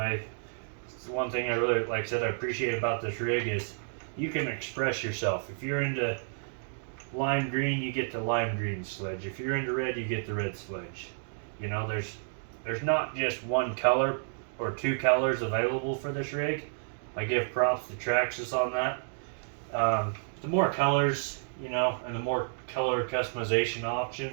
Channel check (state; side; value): silent; left; digital silence